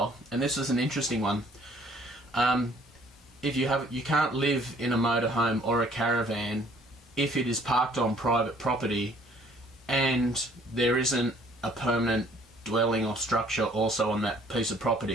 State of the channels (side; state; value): both; normal; correlation 0.59